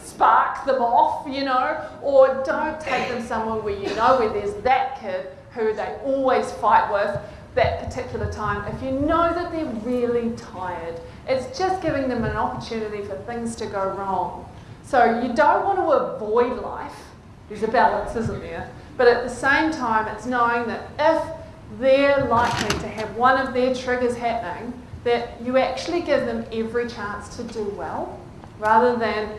them off, you know, or don't take them somewhere where you know where there's that kid who they always fight with that particular time. If you know that they're really tired, it's just giving them an opportunity for things to go wrong. So you don't want to avoid life. There's a balance, isn't there? But at the same time, it's knowing that if they're likely to have one of their triggers happening, that you actually give them every chance to do well, rather than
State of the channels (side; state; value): both; identical; correlation 1.00